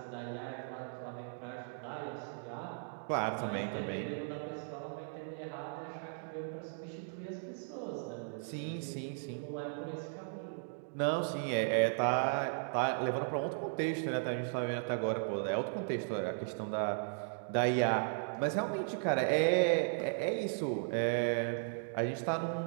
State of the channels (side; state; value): left; silent; digital silence